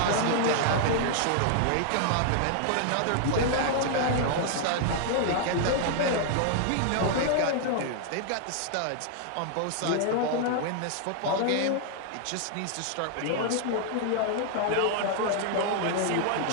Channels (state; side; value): different; both; correlation 0.00